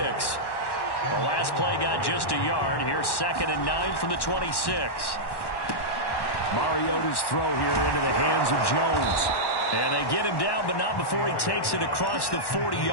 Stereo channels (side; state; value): right; late; 1.1 ms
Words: The last play got just a yard. Here's 2nd and 9 from the 26. Mariota's throw here into the hands of Jones. And they get him down, but not before he takes it across the